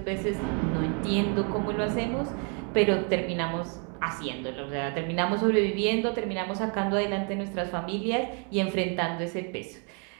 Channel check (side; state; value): left; quieter; 37.9 dB